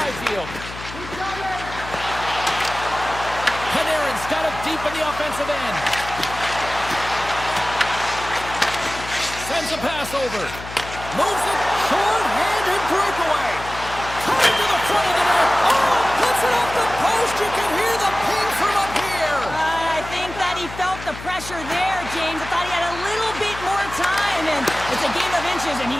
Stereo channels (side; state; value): left; noise; hum, 12 dB below the sound